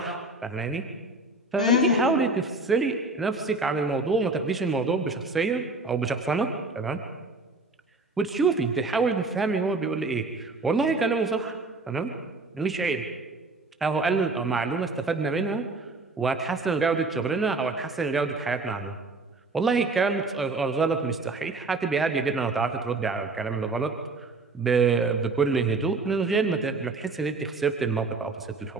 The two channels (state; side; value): quieter; left; 3.4 dB